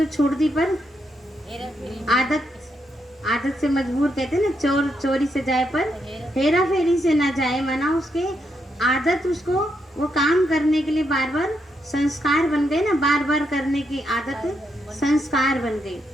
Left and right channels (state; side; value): normal; both; correlation 0.80